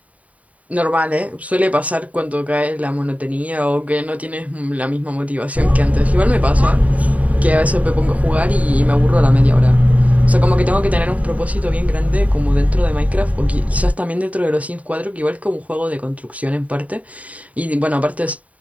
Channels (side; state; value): left; late; 0.069 ms